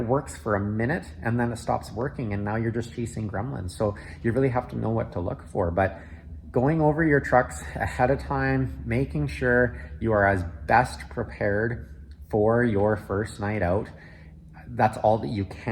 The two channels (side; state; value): both; identical; correlation 1.00